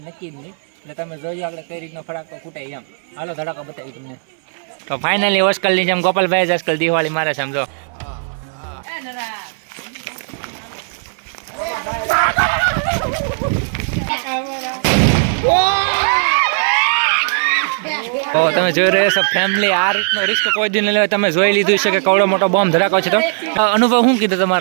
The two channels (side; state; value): left; silent; 61 dB below the other